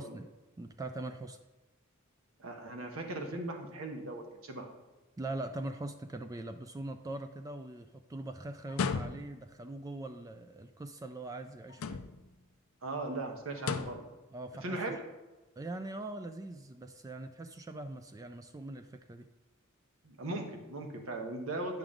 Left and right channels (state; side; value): normal; both; correlation 0.38